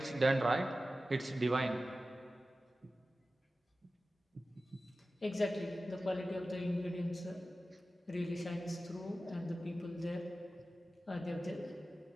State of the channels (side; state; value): both; normal; correlation 0.95